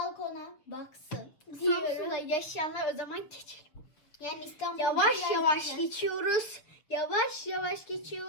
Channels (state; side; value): late; right; 6.5 ms